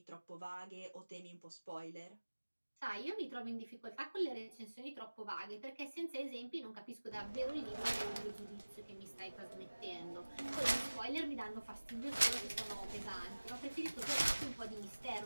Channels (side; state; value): both; inverted; correlation -1.00